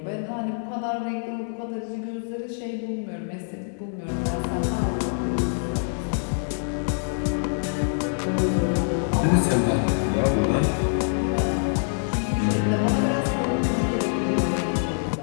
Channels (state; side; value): silent; right; digital silence